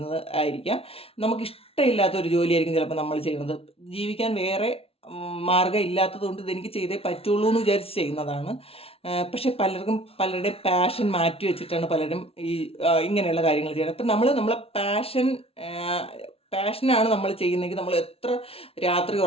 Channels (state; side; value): late; right; 0.28 ms